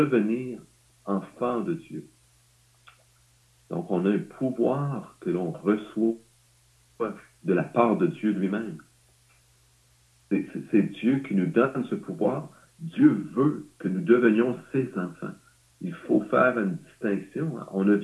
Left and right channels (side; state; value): both; identical; correlation 1.00